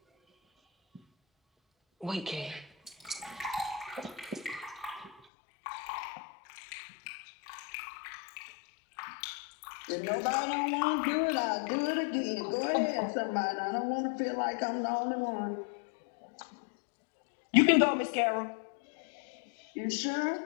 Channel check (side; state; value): right; drops out; at 5.2 s